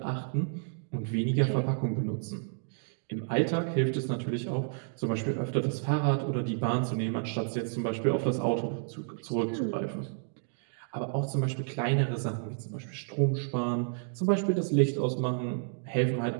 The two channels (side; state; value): left; silent; digital silence